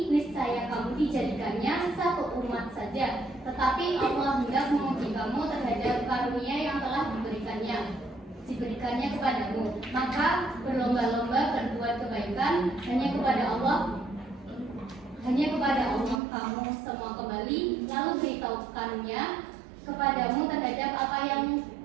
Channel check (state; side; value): drops out; left; at 16.2 s